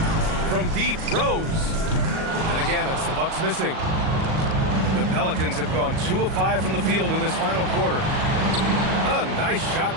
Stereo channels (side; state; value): left; late; 38 ms